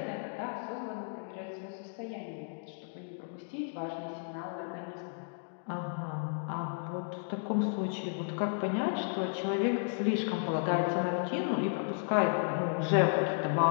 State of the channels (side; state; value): right; silent; digital silence